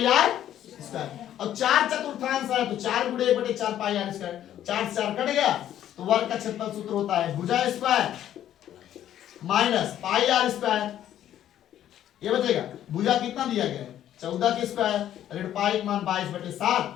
आर स्क्वायर। और 4 चतुर्थांश है तो 4 गुणे 1/4 पाई आर स्क्वायर, 4 से 4 कट गया, तो वर्ग का क्षेत्रफल सूत्र होता है भुजा square minus pi r square. ये बचेगा, भुजा कितना दिया गया है, 14 के स्क्वायर, ऋण पाई मान 22/7,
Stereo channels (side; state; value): right; quieter; 11.4 dB